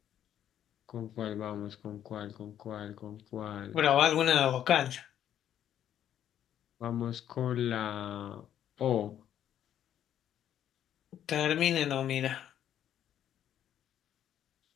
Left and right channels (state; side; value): quieter; right; 10.5 dB